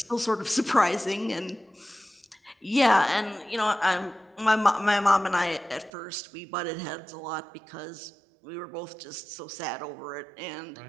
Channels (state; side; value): drops out; left; at 5.9 s